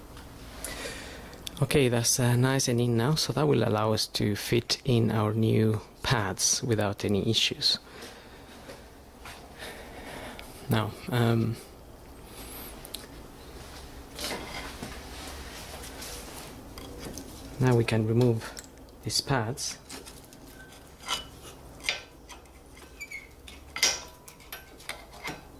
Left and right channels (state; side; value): identical; both; correlation 1.00